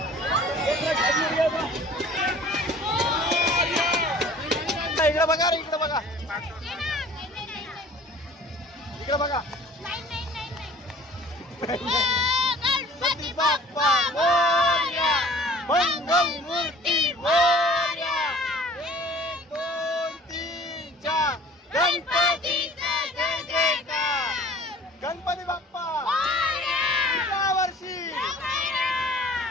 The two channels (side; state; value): both; normal; correlation 0.49